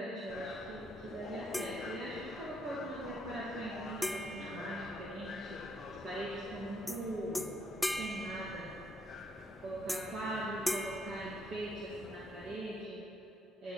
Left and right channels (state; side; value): normal; both; correlation 0.72